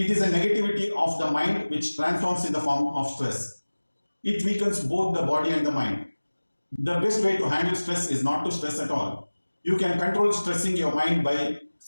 is a negativity of the mind which transforms in the form of stress. It weakens both the body and the mind. The best way to handle stress is not to stress at all. You can control stressing your mind by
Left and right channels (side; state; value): both; inverted; correlation -1.00